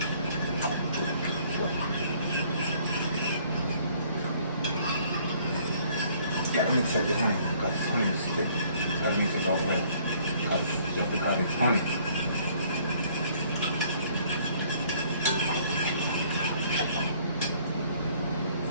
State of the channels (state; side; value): inverted; both; correlation -0.60